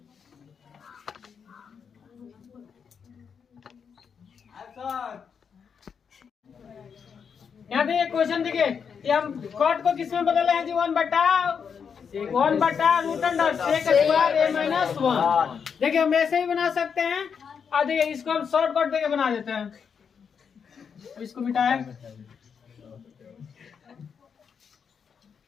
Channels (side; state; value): right; quieter; 6.7 dB